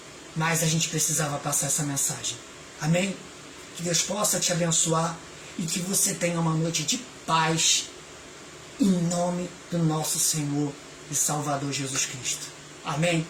mas a gente precisava passar essa mensagem. Amém? Que Deus possa te abençoar e que você tenha uma noite de paz em nome do nosso Senhor e Salvador Jesus Cristo. Amém?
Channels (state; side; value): identical; both; correlation 1.00